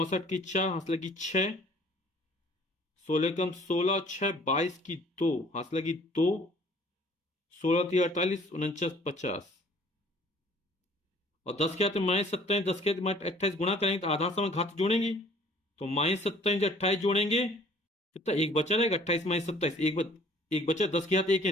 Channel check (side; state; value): both; normal; correlation 0.54